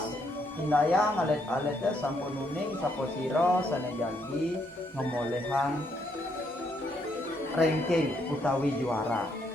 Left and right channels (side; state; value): both; normal; correlation 0.74